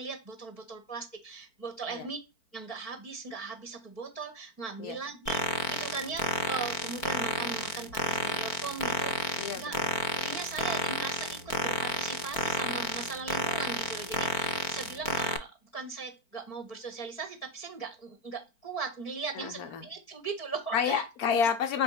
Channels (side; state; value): right; late; 4.5 ms